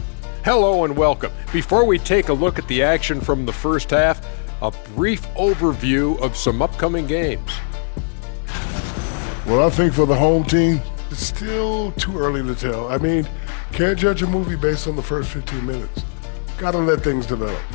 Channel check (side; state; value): right; silent; digital silence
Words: Hello and welcome. Before we take a look at the action from the first half, a brief overview of some upcoming games. Well, I think for the home team, it's still too early to tell. I mean, can't judge a movie based on the first 15 minutes. Gotta let things develop.